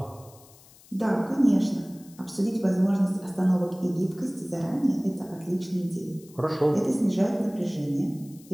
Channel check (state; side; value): noise; left; hiss, 25 dB below the sound